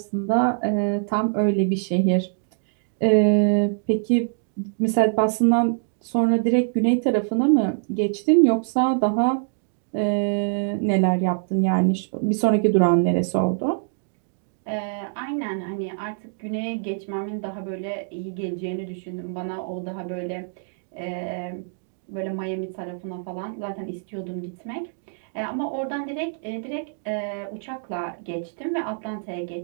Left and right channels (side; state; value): left; silent; digital silence